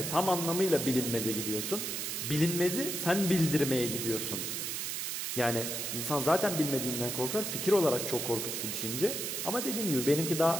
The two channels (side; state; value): right; noise; hiss, 3 dB below the sound